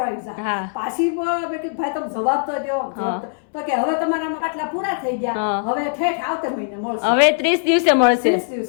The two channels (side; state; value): right; silent; 65 dB below the other